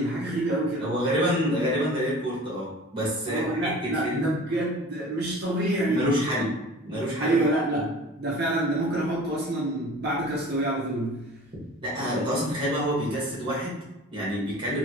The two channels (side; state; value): both; normal; correlation 0.42